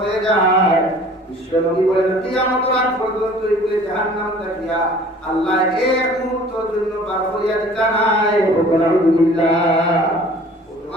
যায়, বিশ্বনবী বলেন কিয়ামতের আগ পর্যন্ত এগুলো জাহান্নাম থাকিয়া আল্লাহ এক মুহূর্তের জন্য বার করিয়া দিতা নাই। আলহামদুলিল্লাহ।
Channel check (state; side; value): normal; both; correlation 0.49